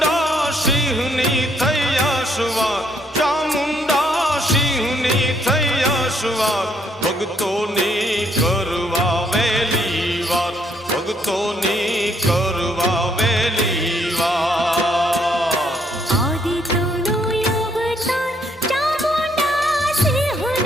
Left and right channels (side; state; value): both; normal; correlation 0.70